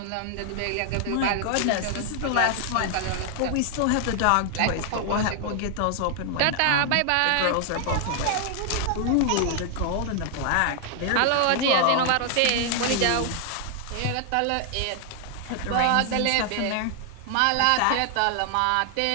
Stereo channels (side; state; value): both; different; correlation 0.00